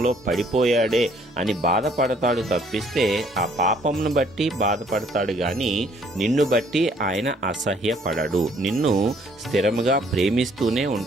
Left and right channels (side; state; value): both; normal; correlation 0.63